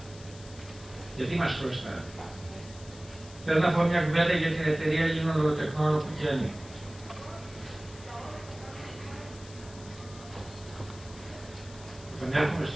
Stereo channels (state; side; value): noise; left; hiss, 19 dB below the sound